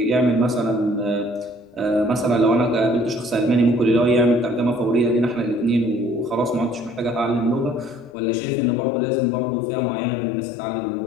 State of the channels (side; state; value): right; drops out; at 8.2 s